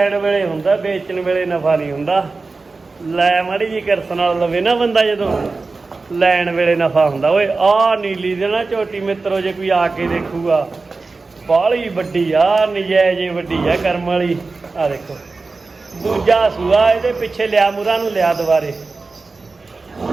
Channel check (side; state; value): left; quieter; 3.9 dB